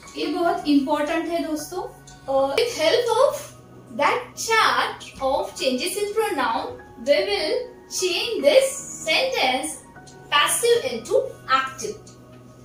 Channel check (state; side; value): identical; both; correlation 1.00